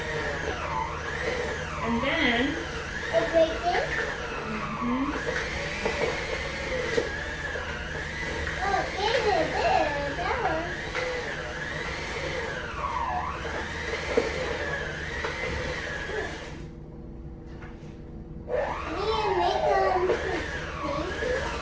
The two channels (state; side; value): identical; both; correlation 1.00